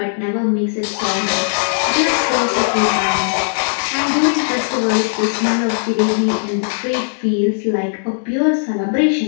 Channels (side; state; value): right; silent; digital silence